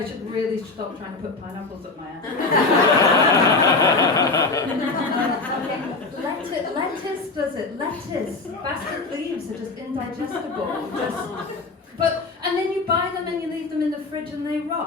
should really stop trying to put pineapples up my ass. Lettuce does it. Lettuce. Bastard leaves are just indigestible. And then you buy them and you leave them in the fridge and they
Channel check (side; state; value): right; quieter; 3.7 dB